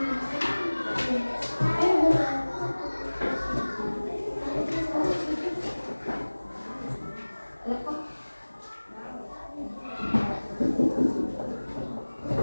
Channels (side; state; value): both; inverted; correlation -1.00